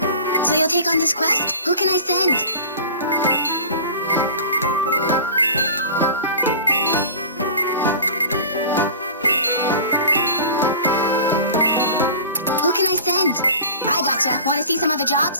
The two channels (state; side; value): inverted; both; correlation -0.39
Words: So you'll take on this quest? Who can I send? Who can I send? I gotcha. Want to see some other